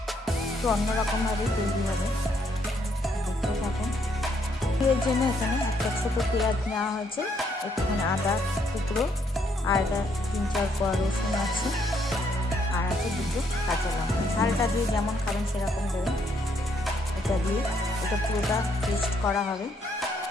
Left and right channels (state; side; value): normal; both; correlation 0.72